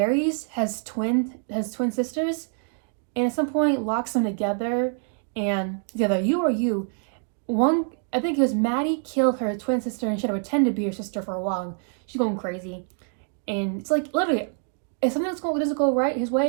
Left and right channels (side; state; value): left; silent; 56 dB below the other